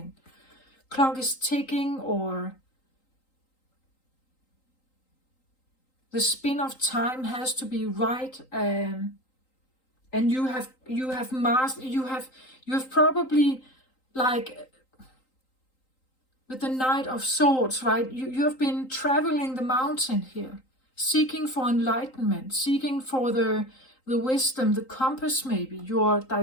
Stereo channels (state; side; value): late; right; 3.8 ms